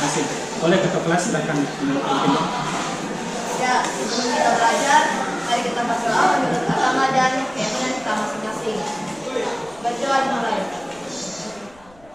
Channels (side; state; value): left; noise; rumble, 27 dB below the sound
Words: Oleh ketua kelas silakan menutup. Ya, sebelum kita belajar, mari kita berdoa menurut agama dan keyakinan kita masing-masing. Berdoa dimulai.